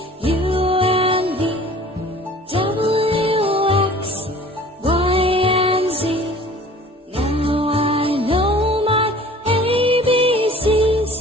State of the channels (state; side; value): normal; both; correlation 0.47